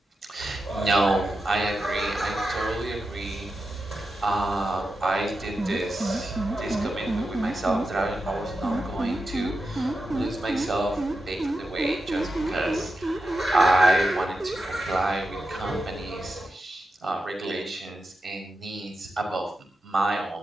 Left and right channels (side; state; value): both; normal; correlation 0.90